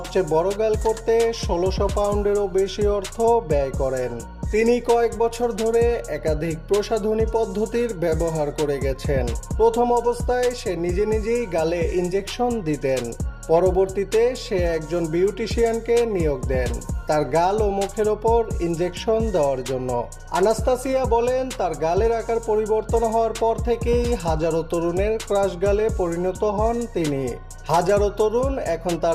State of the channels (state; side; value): identical; both; correlation 1.00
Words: বড় গাল করতে 1600 পাউন্ডেরও বেশি অর্থ ব্যয় করেন। তিনি কয়েক বছর ধরে একাধিক প্রসাধনী পদ্ধতির ব্যবহার করে গেছেন। প্রথম অবস্থায় সে নিজেই গালে ইনজেকশন দিতেন। পরবর্তীতে সে একজন বিউটিশিয়ানকে নিয়োগ দেন তার গাল ও মুখের ওপর ইনজেকশন দেওয়ার জন্য। আনাস্তাসিয়া বলেন, তার গালের আকার পরিবর্তন হওয়ার পর থেকেই হাজারো তরুণের ক্রাশ গালে পরিণত হন তিনি। হাজারো তরুণ এখন